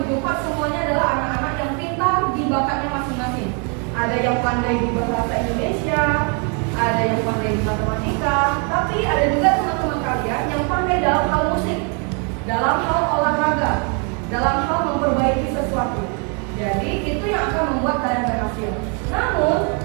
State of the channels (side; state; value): left; quieter; 37.2 dB